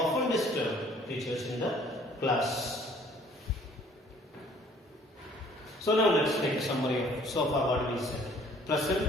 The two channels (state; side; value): normal; both; correlation 0.56